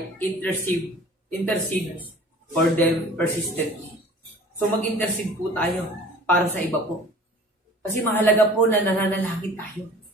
intercede for them persistently. So mag-intercede po tayo para sa iba po. Kasi mahalaga po na nananalangin tayo.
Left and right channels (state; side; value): normal; both; correlation 0.46